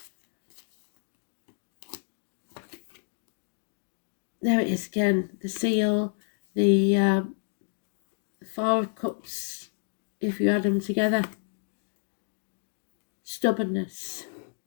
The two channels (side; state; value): right; silent; 58 dB below the other